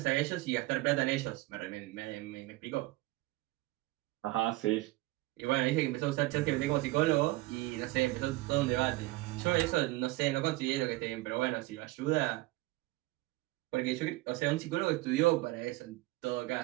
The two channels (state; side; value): quieter; left; 19.7 dB